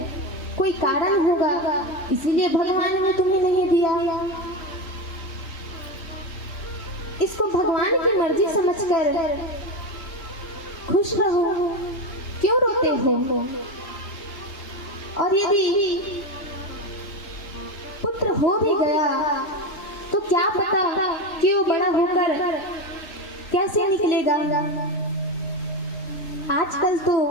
कोई कारण होगा इसीलिए भगवान ने तुम्हें नहीं दिया। इसको भगवान की मर्जी समझकर खुश रहो, क्यों रोते हो। और यदि पुत्र हो भी गया तो क्या पता कि वो बड़ा होकर कैसे निकलेगा। आजकल तो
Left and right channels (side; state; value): right; late; 3.1 ms